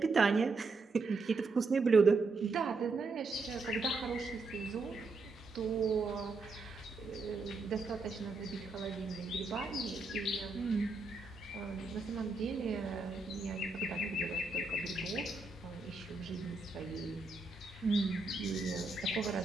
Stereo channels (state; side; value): quieter; left; 3.6 dB